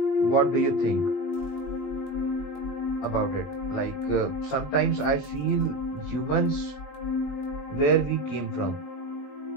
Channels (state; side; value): late; right; 20 ms